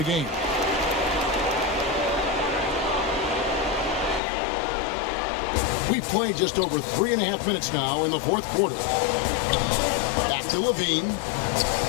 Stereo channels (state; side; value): drops out; right; at 4.2 s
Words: game. We've played just over 3.5 minutes now in the fourth quarter. Back to LaVine.